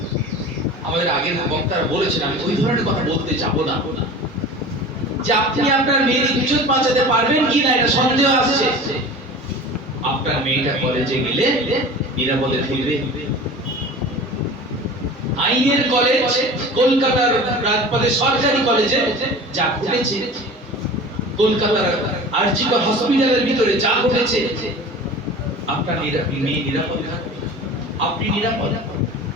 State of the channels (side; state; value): both; normal; correlation 0.38